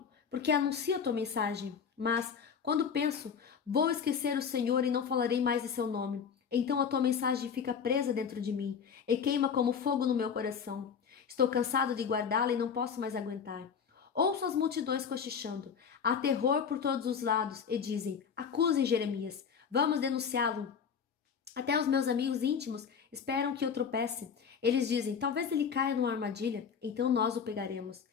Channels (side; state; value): right; quieter; 6.8 dB